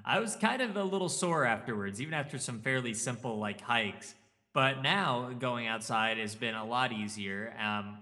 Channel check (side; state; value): both; identical; correlation 1.00